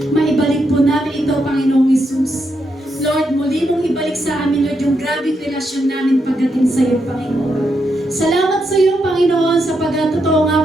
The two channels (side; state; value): both; normal; correlation 0.81